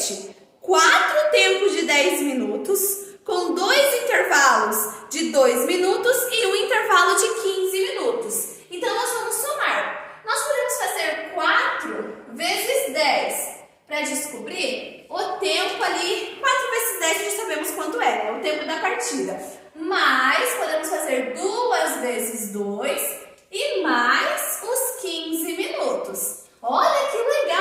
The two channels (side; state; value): both; identical; correlation 1.00